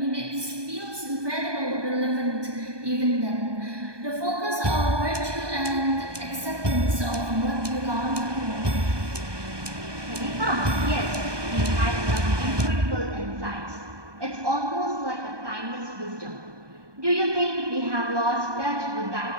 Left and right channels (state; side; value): late; left; 1.2 ms